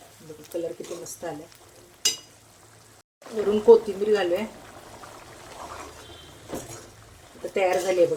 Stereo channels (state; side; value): identical; both; correlation 1.00